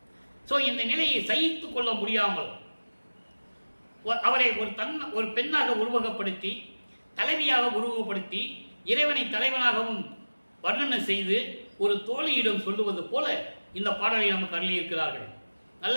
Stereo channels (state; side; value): inverted; both; correlation -1.00